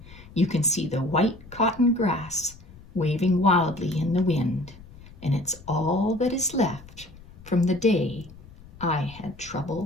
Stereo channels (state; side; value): noise; left; rumble, 20 dB below the sound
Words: you can see the white cotton grass waving wildly in the wind, and it's all that is left from the day I had